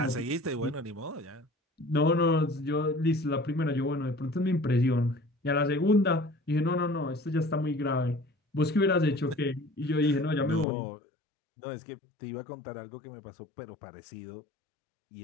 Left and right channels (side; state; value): right; drops out; at 10.7 s